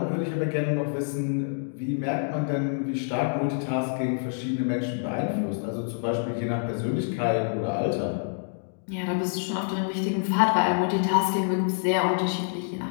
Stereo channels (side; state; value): right; silent; digital silence